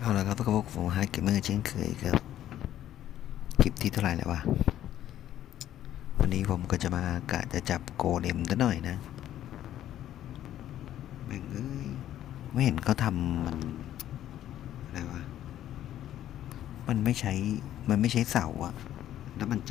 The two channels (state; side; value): quieter; right; 12.0 dB